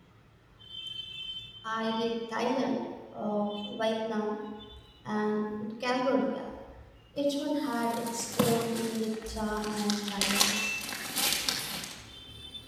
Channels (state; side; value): identical; both; correlation 1.00